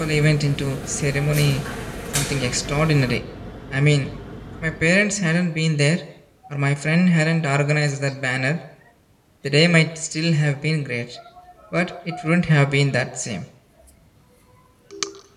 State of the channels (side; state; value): both; identical; correlation 1.00